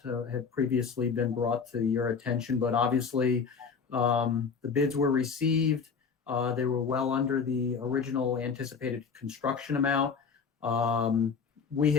had previously been brought to your attention, but obviously the bids were received. They were well under the original anticipated construction amount. We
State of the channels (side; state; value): right; quieter; 5.7 dB